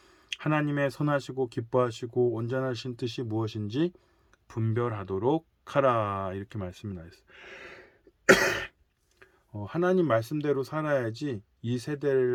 하나님의 선하시고 기뻐하시고 온전하신 뜻이 무엇인지 분별하도록 하라. 이렇게 말씀이 나와 있어요. 하나님 말씀대로 살아야지 이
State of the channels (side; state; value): both; identical; correlation 1.00